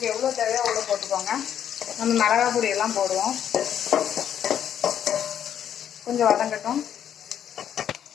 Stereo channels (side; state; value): right; quieter; 9.6 dB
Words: எவ்வளோ தேவையோ அவ்வளோ போட்டுக்கோங்க. நம்ம மிளகாய் பொடியெல்லாம் போடுவோம். கொஞ்சம் வதங்கட்டும்.